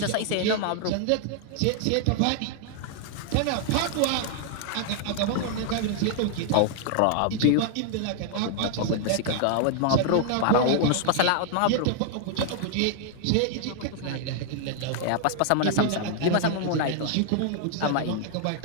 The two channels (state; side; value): different; both; correlation 0.00